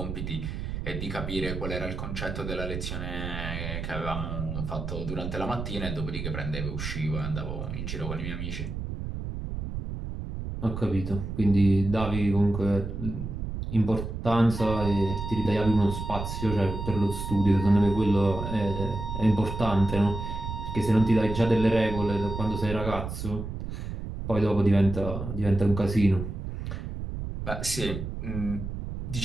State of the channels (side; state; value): right; noise; rumble, 6 dB below the sound